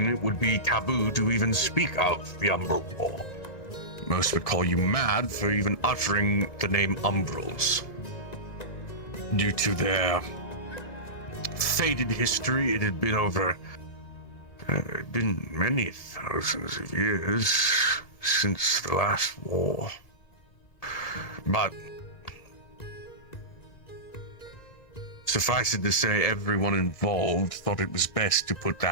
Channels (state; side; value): late; right; 1.9 ms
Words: it would be taboo to even speak of the Umbral War. Most would call you mad for even uttering the name Umbrals. Due to their faded history, it had been been many thousands of years since the last war. But suffice it to say, everyone involved thought it was best to put